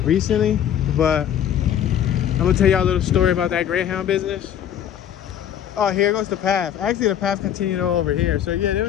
recently, but I'm gonna tell y'all a little story about that Greyhound business. Oh, here goes the path. Actually, the path continued over here. So yeah, there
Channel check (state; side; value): quieter; right; 9.9 dB